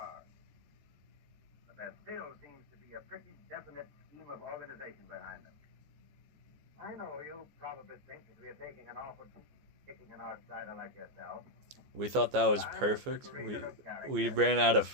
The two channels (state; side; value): late; left; 14 ms